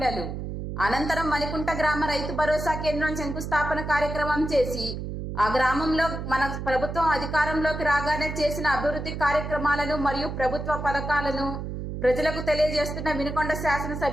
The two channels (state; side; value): noise; right; hum, 6 dB below the sound